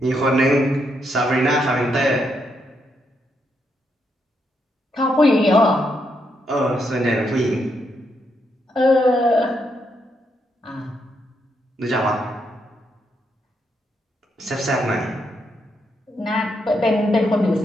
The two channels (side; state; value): both; normal; correlation 0.79